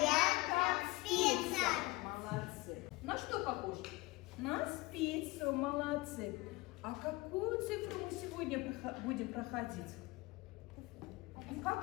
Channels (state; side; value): quieter; right; 22.0 dB